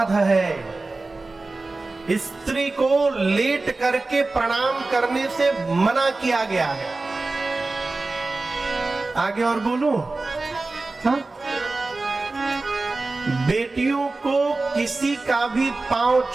है। स्त्री को लेट करके प्रणाम करने से मना किया गया है। आगे और बोलूं? हाँ? बेटियों को किसी का भी पांव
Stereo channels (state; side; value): quieter; left; 3.4 dB